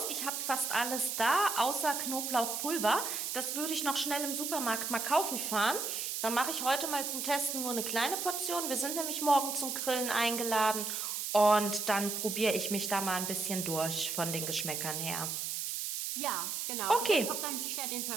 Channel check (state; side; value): noise; right; hiss, 3 dB below the sound